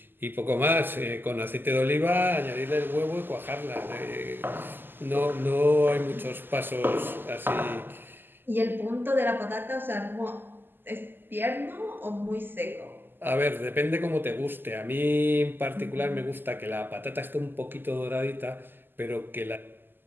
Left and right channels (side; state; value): left; late; 0.094 ms